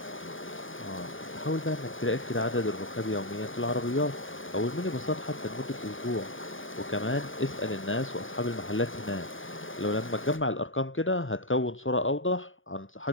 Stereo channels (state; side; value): late; right; 0.58 ms